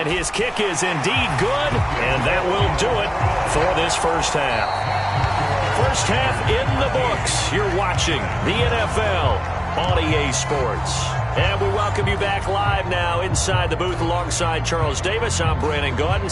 his kick is indeed good, and that will do it for this first half. First half in the books. You're watching the NFL on EA Sports. And we welcome you back live now inside the booth alongside Charles Davis. I'm Brandon Gaudin,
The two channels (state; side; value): identical; both; correlation 1.00